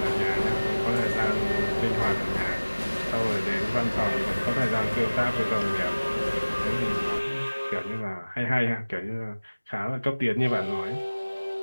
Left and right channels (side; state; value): both; inverted; correlation -1.00